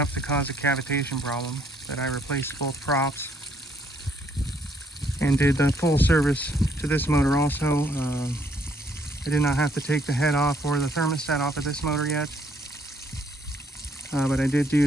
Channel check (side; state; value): both; normal; correlation 0.68